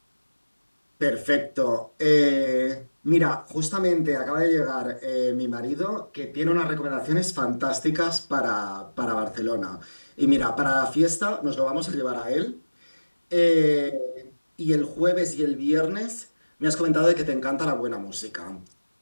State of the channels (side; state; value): both; inverted; correlation -1.00